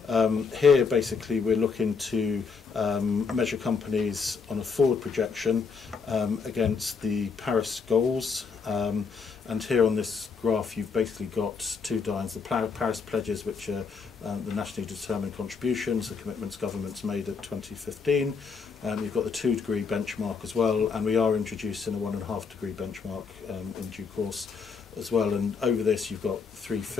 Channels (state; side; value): quieter; right; 5.3 dB